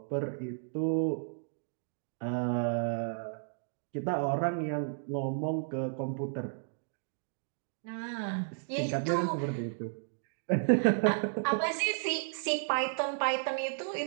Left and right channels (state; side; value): silent; left; digital silence